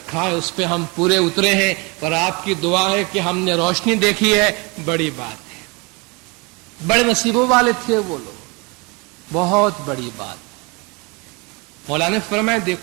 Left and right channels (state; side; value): quieter; left; 29.0 dB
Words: ہے اس پہ ہم پورے اترے ہیں اور آپ کی دعا ہے کہ ہم نے روشنی دیکھی ہے، بڑی بات ہے۔ بڑے نصیبوں والے تھے وہ لوگ، بہت بڑی بات۔ مولا نے فرمایا